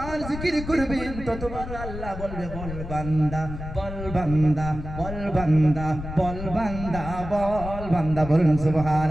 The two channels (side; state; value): left; noise; rumble, 9 dB below the sound